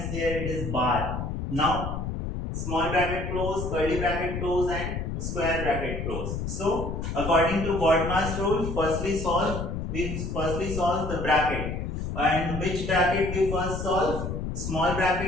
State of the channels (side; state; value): left; noise; rumble, 4 dB below the sound